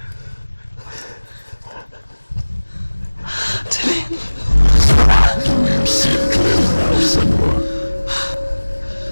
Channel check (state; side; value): inverted; both; correlation -1.00